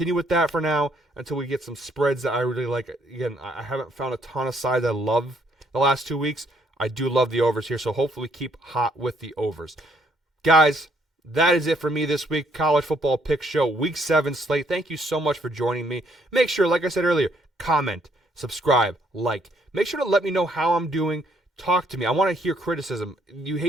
with that for now until we get some spreads that I really like. Again, I haven't found a ton of sides I love the last 2 weeks. I do love the overs here, so hopefully keep hot with the overs. Guys, that is it for me this week. College Football Pick Show, Week 7 slate. Thank you so much for joining me. Make sure, like I said earlier, comment, subscribe, like. Make sure to let me know how I'm doing. Talk to me. I want to hear criticism. You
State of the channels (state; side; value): normal; both; correlation 0.69